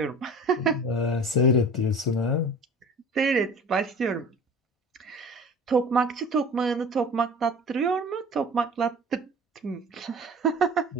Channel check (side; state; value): both; normal; correlation 0.41